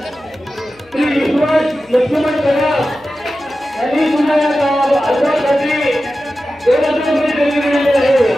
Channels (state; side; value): noise; left; hum, 30 dB below the sound